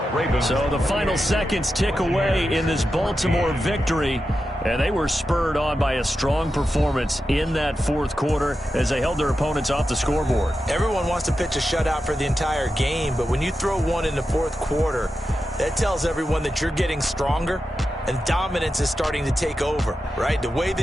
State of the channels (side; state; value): both; normal; correlation 0.90